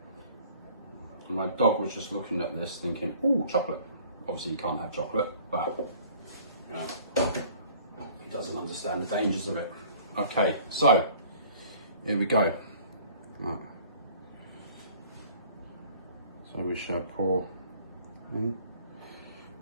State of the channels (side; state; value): both; inverted; correlation -0.52